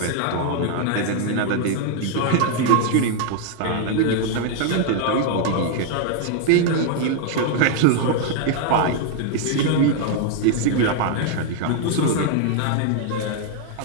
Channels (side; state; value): both; different; correlation 0.00